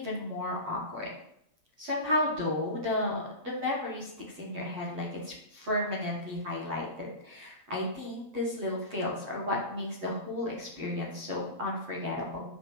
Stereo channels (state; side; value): late; left; 9.7 ms